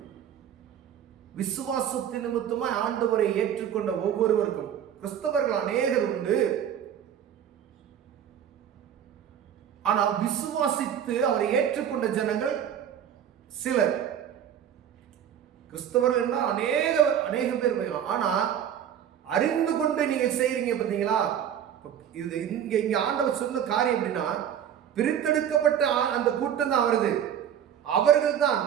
விசுவாசத்தின் நிமித்தமாய் ஆண்டவரை ஏற்றுக்கொண்ட ஒவ்வொருவருக்கும், கிறிஸ்தவர்கள் அநேகர் உண்டு, ஆனா விசுவாசித்து அவரை ஏற்றுக்கொண்ட ஜனங்கள் சிலர். கிறிஸ்தவர்கள் அநேக பேர் போயிடலாம். ஆனா அறிந்து கொண்டு நீங்க செய்றீங்க பார்த்தீங்களா, இது இங்க ஆண்டவர் சொன்ன காரியம் அப்படின்னா, பிரித்தெடுக்கப்பட்ட அந்த கூட்டம் தான் வருது. அவர்கள் தான்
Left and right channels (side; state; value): left; quieter; 9.4 dB